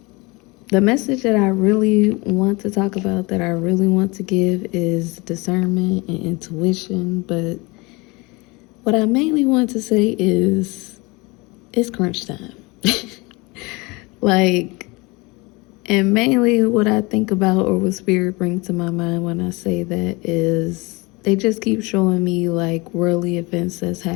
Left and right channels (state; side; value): quieter; right; 25.4 dB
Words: The message that I really want to talk about, that I really want to give, is discernment and intuition. But what I mainly want to say is it's crunch time. And mainly what I think about or what Spirit brings to my mind when I say that is they just keep showing me like worldly events that's